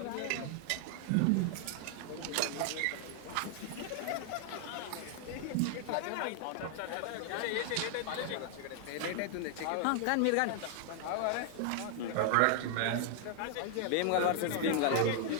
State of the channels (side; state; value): both; different; correlation 0.00